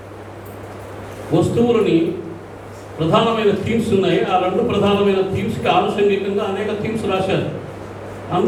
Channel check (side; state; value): both; identical; correlation 1.00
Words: వస్తువులని ప్రధానమైన థీమ్స్ ఉన్నాయి. ఆ 2 ప్రధానమైన థీమ్స్కి ఆనుషంగికంగా అనేక థీమ్స్ రాశారు.